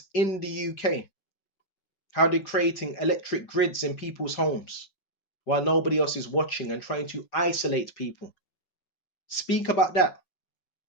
in the UK, how they're creating electric grids in people's homes while nobody else is watching and trying to isolate people. Speak about that.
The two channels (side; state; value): right; late; 5.4 ms